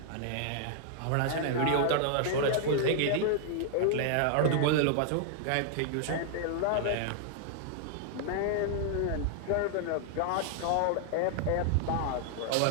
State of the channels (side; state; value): both; different; correlation 0.00